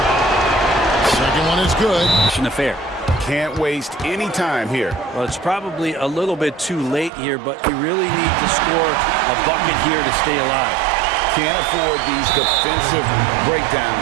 Second one is good. An affair. Can't waste any time here. Well, it's probably a little bit too late here, but you really need to score a bucket here to stay alive. Can't afford these defensive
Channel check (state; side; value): drops out; left; at 7.1 s